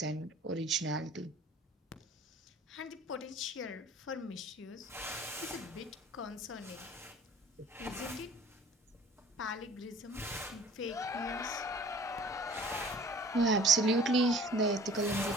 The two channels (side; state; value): both; normal; correlation 0.49